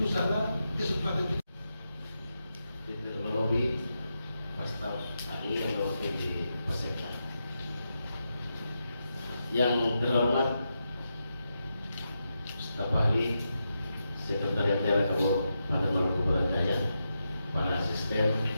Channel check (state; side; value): inverted; both; correlation -0.86